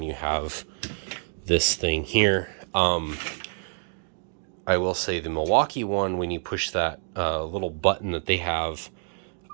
you have this thing here. I will say the Milwaukee one, when you push that little button that they have,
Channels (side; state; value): left; silent; digital silence